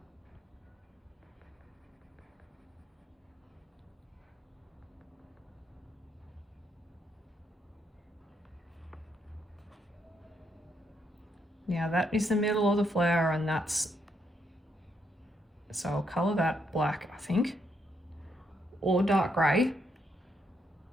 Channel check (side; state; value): both; normal; correlation 0.76